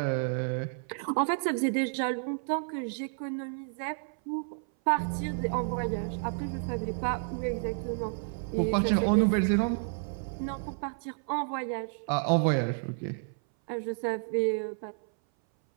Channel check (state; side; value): silent; left; 57 dB below the other